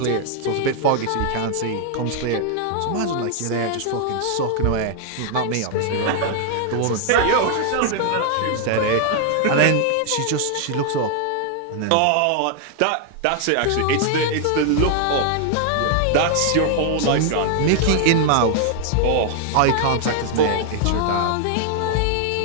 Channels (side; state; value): both; different; correlation 0.00